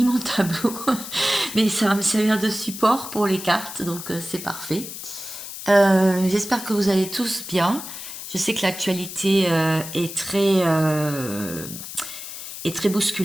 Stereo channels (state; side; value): noise; left; hiss, 10 dB below the sound